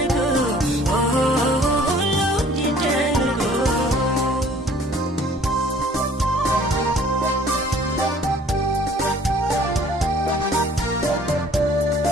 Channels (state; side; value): normal; both; correlation 0.54